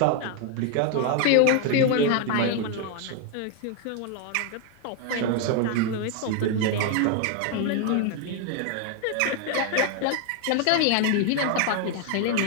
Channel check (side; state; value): both; different; correlation 0.01